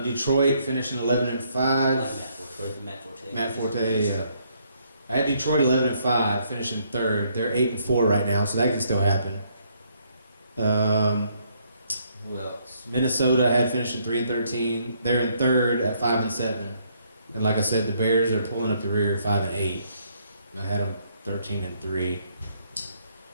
Detroit finishing 11-5. Matt Forte. Yeah. I had Detroit 11-5, finishing third. They're 8-4 right now, so that can still happen. Who else? Minnesota I had finishing 3-13. They're in third at 5-7. And like I said, the Bears are pulling up the rear 5-8. I had them 13-3.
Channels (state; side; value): inverted; both; correlation -0.70